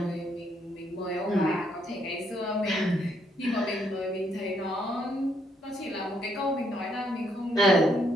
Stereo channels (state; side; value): normal; both; correlation 0.72